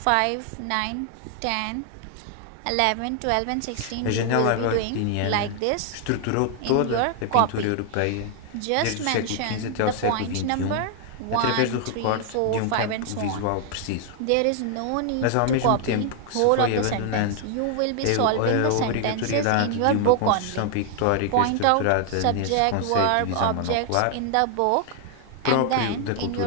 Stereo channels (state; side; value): different; both; correlation 0.00